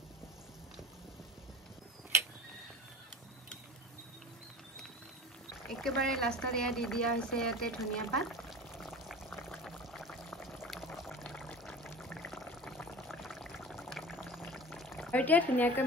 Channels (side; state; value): both; normal; correlation 0.37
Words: একেবাৰে লাষ্টত এয়া দি দিয়া হৈছে ইয়াতে ধনিয়া পাত আৰু এতিয়া ধুনীয়াকৈ